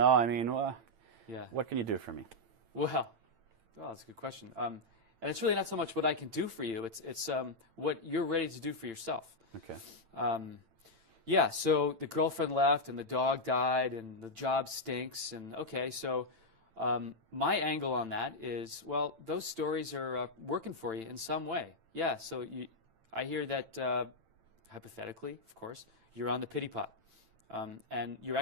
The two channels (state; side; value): late; left; 8.9 ms